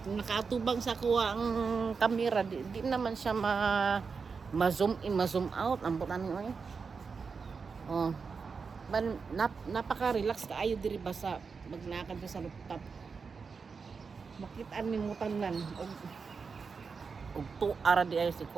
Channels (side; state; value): left; quieter; 5.2 dB